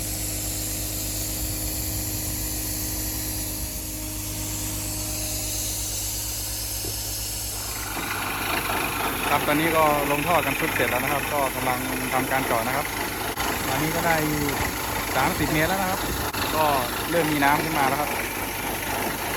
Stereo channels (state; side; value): identical; both; correlation 1.00